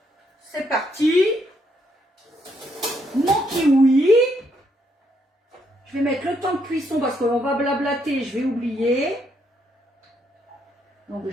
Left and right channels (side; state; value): both; normal; correlation 0.74